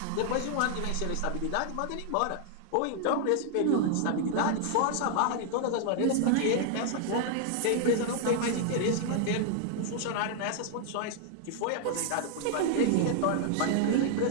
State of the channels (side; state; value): both; different; correlation 0.00